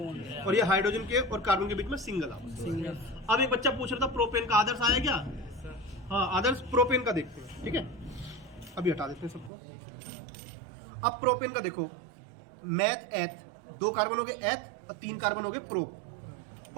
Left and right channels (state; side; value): drops out; left; at 9.5 s